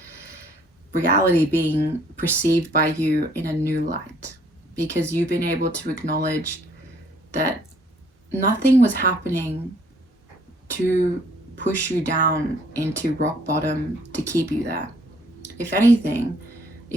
reality being perceived by you in a new light, because you've been able to acknowledge that nothing was happening to push you down into rock bottom to keep you there. If anything,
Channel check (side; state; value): both; normal; correlation 0.62